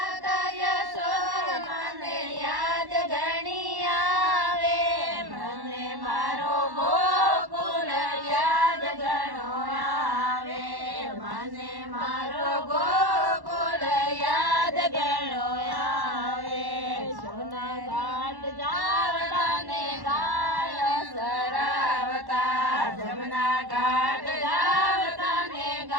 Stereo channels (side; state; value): left; late; 1.1 ms